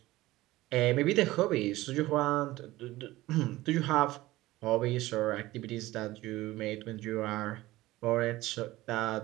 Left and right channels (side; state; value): left; quieter; 17.7 dB